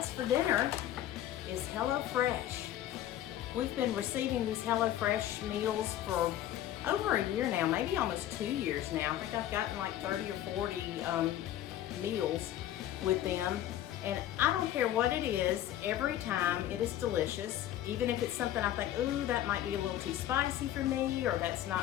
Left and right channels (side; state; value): right; quieter; 12.4 dB